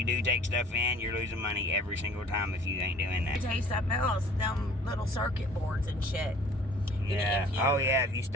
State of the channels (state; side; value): normal; both; correlation 0.51